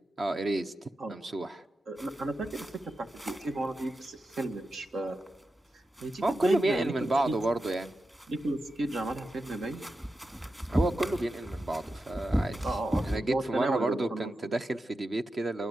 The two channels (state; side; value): normal; both; correlation 0.90